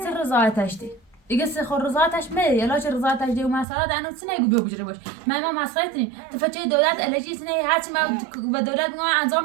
رضایتش دی دیگه سخور رضایتش میده یلا چه رضایتش دی و مسئله دانو سینه گو بجره باش ما مسئله تنی تفچه دولت الهی سینه هرچی ما به دولت میگم انجام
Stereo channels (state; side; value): drops out; left; at 3.7 s